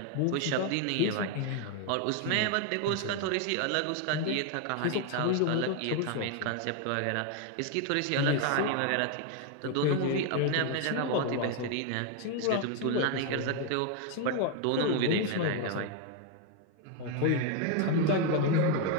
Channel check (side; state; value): both; different; correlation 0.01